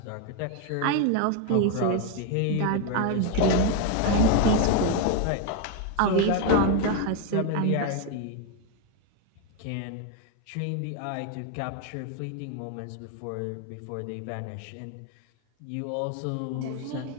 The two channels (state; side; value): different; both; correlation 0.01